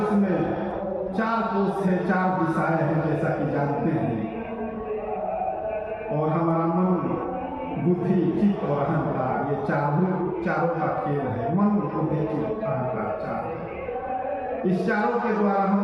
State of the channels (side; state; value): both; identical; correlation 1.00